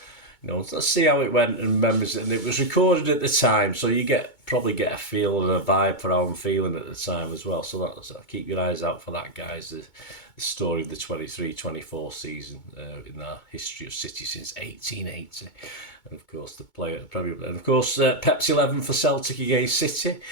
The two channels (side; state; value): right; late; 2.2 ms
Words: let's see how it went and memories. And it was recorded at the time, so you probably get a feel and a vibe for how I'm feeling at the time as well. So keep your eyes out for that, guys. The story of the 23-24 season in our history of City since 1880. And of course, the player at the Premier League. And of course, Pep's 11 for Celtic against City.